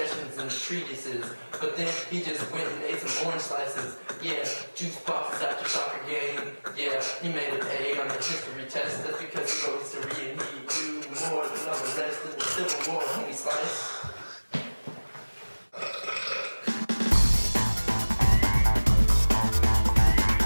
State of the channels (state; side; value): inverted; both; correlation -1.00